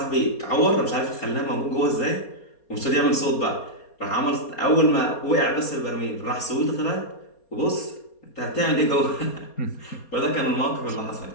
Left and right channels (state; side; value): late; right; 4.3 ms